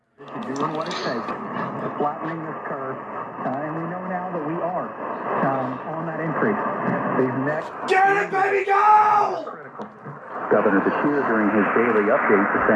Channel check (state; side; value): identical; both; correlation 1.00